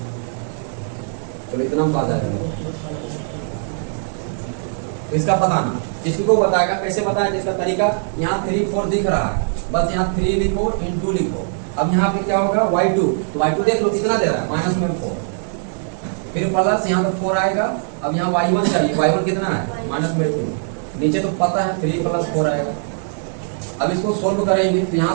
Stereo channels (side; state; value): left; silent; 65 dB below the other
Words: चलो इतना हम पा जाएगा। इसका पता ना, इसको बताएगा कैसे बताया, जिसका तरीका यहाँ 3 4 दिख रहा है, बस यहाँ 3 लिखो इंटू लिखो। अब यहाँ पे क्या होगा y2, तो y2 देख लो कितना दे रहा है माइनस में 4, फिर प्लस यहाँ पे 4 आएगा। अब यहाँ y1 चाहिए, y1 कितना है माइनस में 2, नीचे तो पता है 3 + 4 आएगा। अब इसको सोल्व करेंगे तो